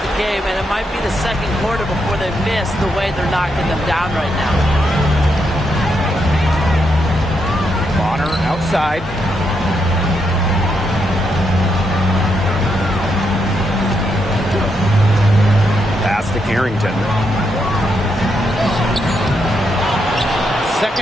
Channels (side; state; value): both; normal; correlation 0.80